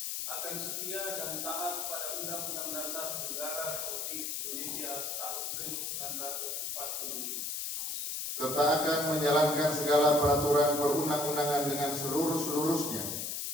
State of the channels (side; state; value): left; noise; hiss, 3 dB below the sound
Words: akan setia dan taat pada Undang-Undang Dasar Negara Republik Indonesia tahun 1945, serta akan menjalankan segala peraturan perundang-undangan dengan seluruh-seluruhnya